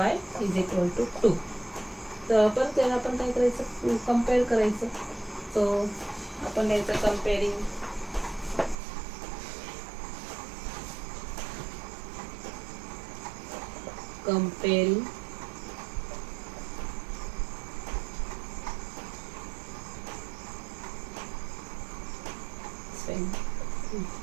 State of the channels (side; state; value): left; drops out; at 8.8 s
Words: = 2. तर पण त्याला आपण काय करायचं, कम्पेअर करायचं. सो आपण याचं comparing